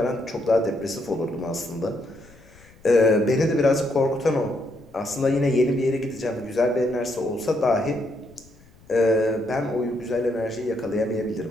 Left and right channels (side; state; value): left; noise; rumble, 26 dB below the sound